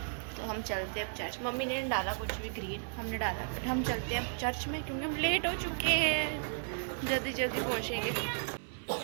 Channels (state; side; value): silent; left; digital silence